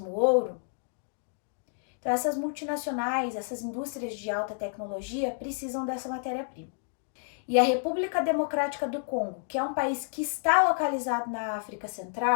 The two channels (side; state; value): right; silent; digital silence